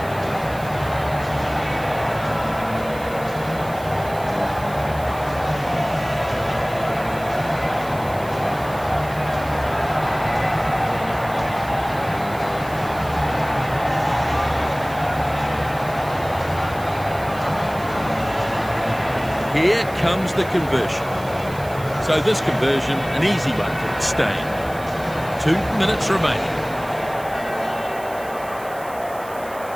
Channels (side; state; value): right; noise; hiss, 19 dB below the sound